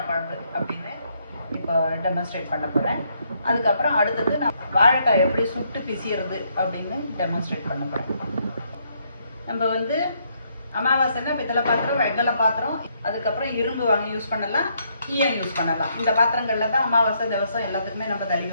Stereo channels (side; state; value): both; inverted; correlation -0.73